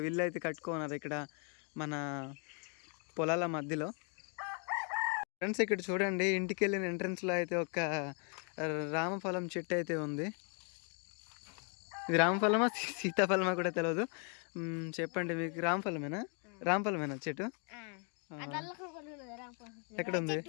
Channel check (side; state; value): right; quieter; 39.3 dB